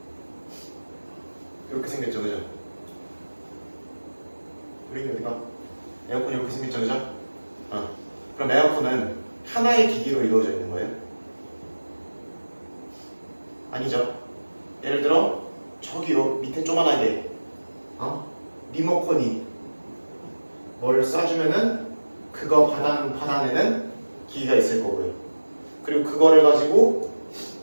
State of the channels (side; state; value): both; inverted; correlation -1.00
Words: 이렇게 생겼죠, 그죠? 우리 어디가? 에어컨이 이렇게 생겼죠, 그죠? 그럼 에어컨은 하나의 기기로 이루어져 있는 거예요? 아니죠. 예를 들어 저기요 밑에 조만하게 리모컨이 뭐를 쏴주면은 그거 받아내는 기기가 있을 거고요. 그리고 그거를 가지고